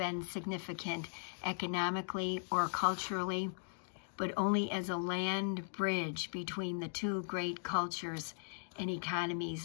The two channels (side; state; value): right; silent; digital silence